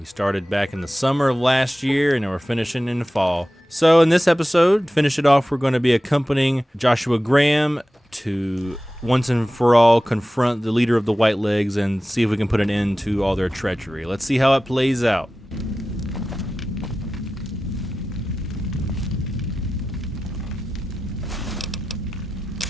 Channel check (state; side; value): normal; both; correlation 0.95